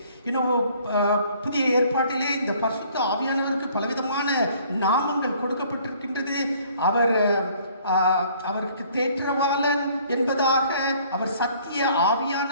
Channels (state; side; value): inverted; both; correlation -0.58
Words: புதிய ஏற்பாட்டிலே இந்த பரிசுத்த ஆவியானவருக்கு பலவிதமான நாமங்கள் கொடுக்கப்பட்டிருக்கின்றது. அவருக்கு தேற்றவாளன் என்பதாக, அவர் சத்திய